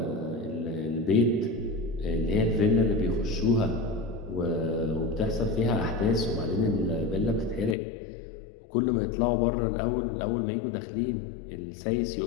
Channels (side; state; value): right; drops out; at 7.8 s